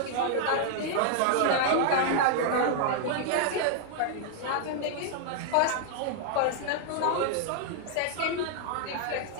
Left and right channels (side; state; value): both; different; correlation 0.00